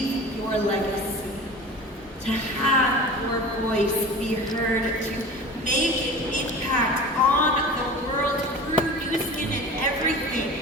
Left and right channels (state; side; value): normal; both; correlation 0.36